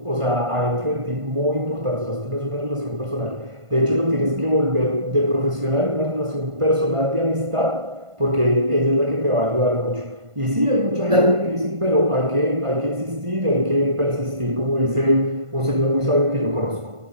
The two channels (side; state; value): left; late; 1.5 ms